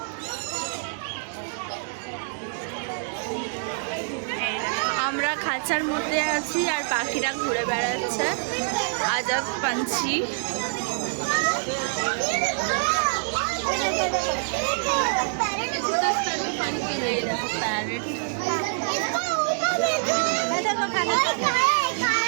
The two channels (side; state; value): left; silent; digital silence